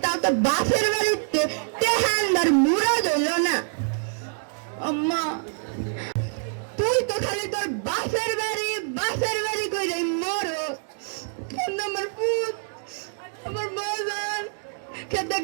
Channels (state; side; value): silent; left; 61 dB below the other